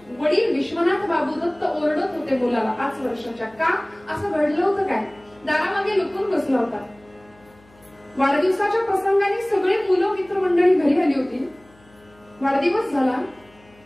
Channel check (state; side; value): noise; left; hum, 29 dB below the sound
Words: वडील विश्वनाथ बाबू दत्त ओरडत होते मुलाला 5 वर्षाच्या. का असं घडलं होतं काय? दारामागे लपून बसला होता. वाढदिवसाच्या प्रसंगाने सगळे मुलं मित्रमंडळी घरी आली होती. वाढदिवस झाला,